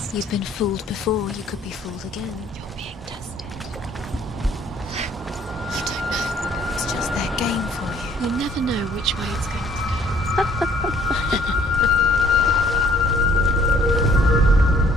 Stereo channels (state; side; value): normal; both; correlation 0.60